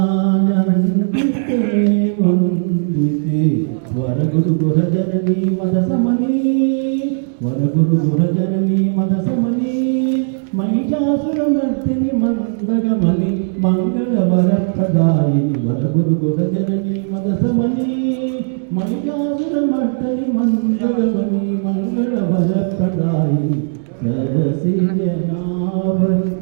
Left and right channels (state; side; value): silent; left; digital silence